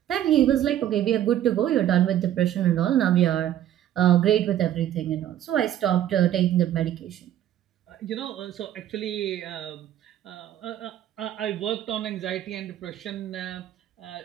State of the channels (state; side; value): quieter; left; 11.6 dB